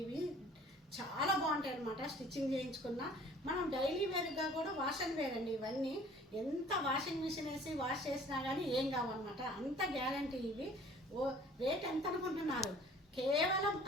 ఇవి చాలా బాగుంటాయి అనమాట. స్టిచ్చింగ్ చేయించుకున్నా మనం డైలీ వేర్గా కూడా వాష్ అండ్ వేర్ అండి. ఇవన్నీ ఎంత వాషింగ్ మిషన్ వేసి వాష్ చేసినా కానీ ఏం కావన్నమాట, అంత గ్యారంటీ. ఇవి రేట్ ఎంత అనుకుంటున్నారు? కేవలం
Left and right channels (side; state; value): both; normal; correlation 0.51